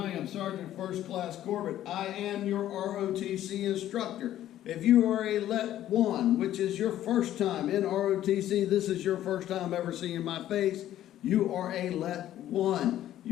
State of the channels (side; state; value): right; quieter; 12.5 dB